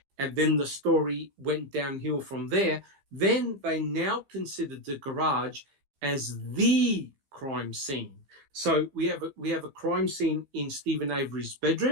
and then the story went downhill from there, then they now considered the garage as the crime scene. So we have a crime scene in Stephen Avery's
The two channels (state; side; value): late; left; 15 ms